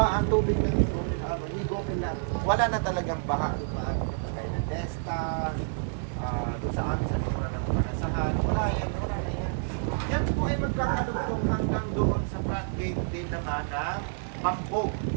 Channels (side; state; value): left; silent; 59 dB below the other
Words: ang tubig ng higopin lang, wala na talagang baha doon maaari na pagay ng Desta, doon sa amin sa likuran ng Panasahan. Wala yan, wala na yan. Yan po ay magkakadugtong hanggang doon sa floodgate din naman ng Pambog.